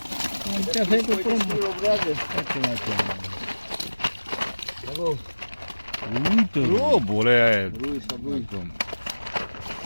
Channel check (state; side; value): inverted; both; correlation -1.00